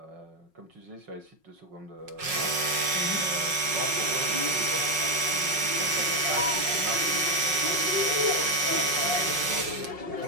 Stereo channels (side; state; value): left; late; 5.5 ms